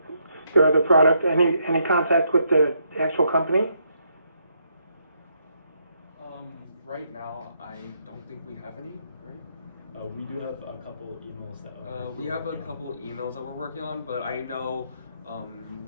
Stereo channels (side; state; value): both; inverted; correlation -0.75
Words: their other product? Any contact with the actual company? Right now, I don't think we have any. Right? We do have a couple emails that we have a couple emails that we're working on, but I know